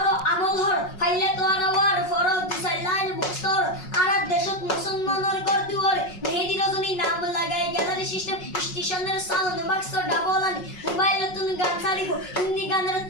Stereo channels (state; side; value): late; right; 5.5 ms